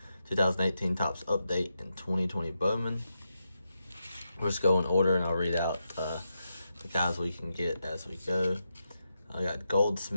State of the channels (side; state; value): both; inverted; correlation -0.86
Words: 2018 Topps Update, and 2020 Bowman. We'll just go in order and I'll read out the guys we can get as we go. I got